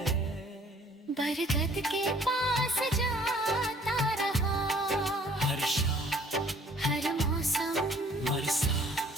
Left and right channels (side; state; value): both; normal; correlation 0.57